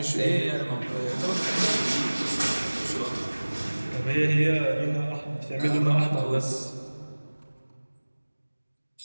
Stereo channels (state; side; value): inverted; both; correlation -1.00